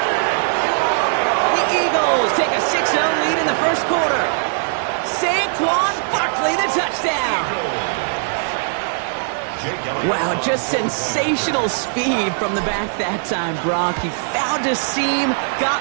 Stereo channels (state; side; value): silent; left; digital silence